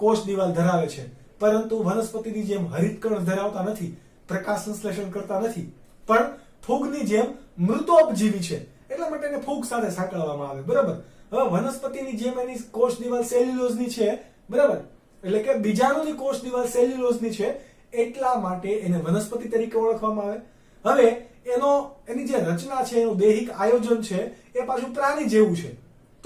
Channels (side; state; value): both; identical; correlation 1.00